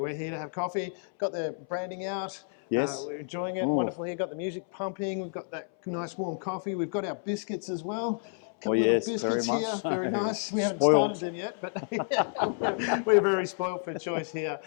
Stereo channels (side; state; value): right; silent; 58 dB below the other